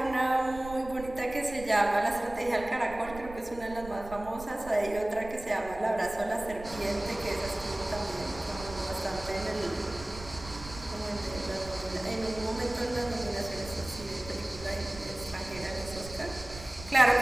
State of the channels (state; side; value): noise; right; rumble, 14 dB below the sound